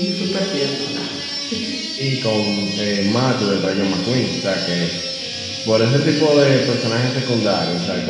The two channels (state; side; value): identical; both; correlation 1.00